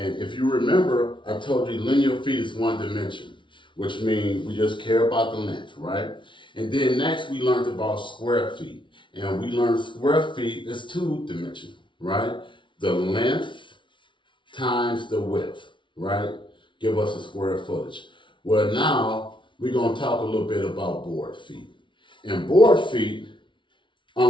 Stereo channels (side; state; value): right; late; 0.24 ms